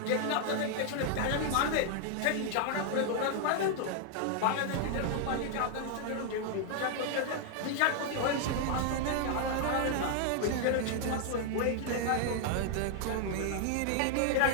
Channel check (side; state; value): both; different; correlation 0.00